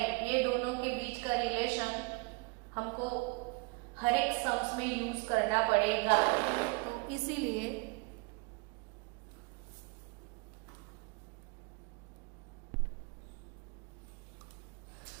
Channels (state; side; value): quieter; left; 28.9 dB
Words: ये दोनों के बीच का रिलेशन हमको हर एक सम्स में यूज करना पड़ेगा, तो इसीलिए